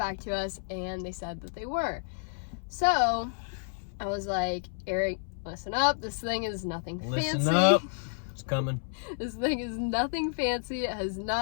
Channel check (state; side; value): silent; right; 57 dB below the other